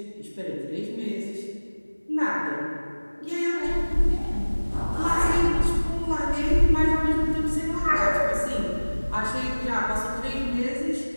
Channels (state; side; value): inverted; both; correlation -1.00